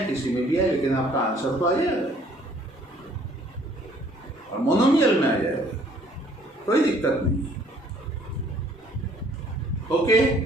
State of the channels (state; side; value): normal; both; correlation 0.59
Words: किसी में भी है, लेकिन आपका आंसर तो आ जाएगा और मोनोमियल में आ जाएगा, कोई दिक्कत नहीं है। ओके,